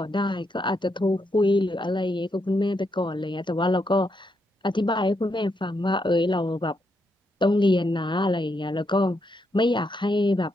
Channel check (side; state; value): both; normal; correlation 0.80